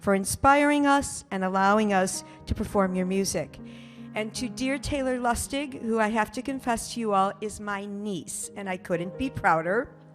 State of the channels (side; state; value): both; identical; correlation 1.00